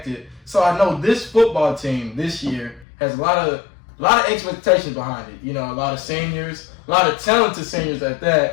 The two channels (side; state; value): right; drops out; at 2.9 s